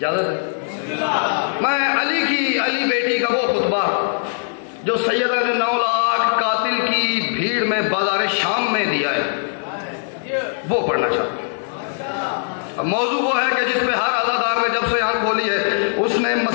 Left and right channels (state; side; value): silent; right; digital silence